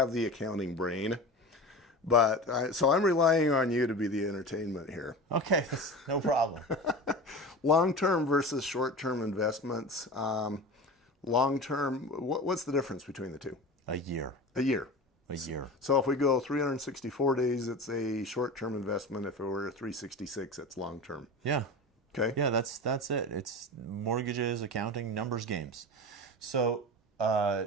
the accounting brain, so I'm relying on you to be the entertainment here. Okay, no problem. Long term versus short term investments. Long term, what's the difference between the two? A year. A year. A year. So if we go 364 days, it's a short term investment. If it were 366, it's long term. Yeah. Okay. Yeah, that's it. It's mortgages, accounting, numbers games. So,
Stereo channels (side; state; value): both; normal; correlation 0.31